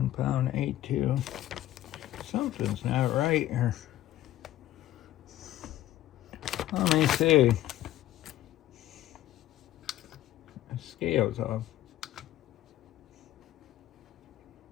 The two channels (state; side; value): quieter; right; 13.9 dB